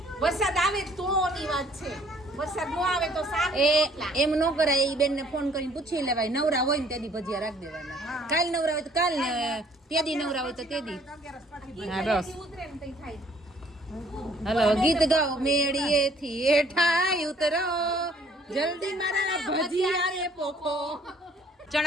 વરસાદ આવે તો ની વાત છે. વરસાદ ન આવે તો શાક એ એમ ન કરાય. એ બેનને ફોન કરીને પૂછી લેવાય. નવરા હોય ને તેદી ભજીયા રાખી દેવાના. કાલ નવરા હોય તો કાલ ને તેદી નવરા હોય તો તેદી. હા બસ. ઉતરે ને તઈ થાય. હલો, ગીત ગાઓ. મેળીએથી હેઠાય ઉતરો, જલ્દી મારા ભજીયા રે પોખો.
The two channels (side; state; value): both; normal; correlation 0.60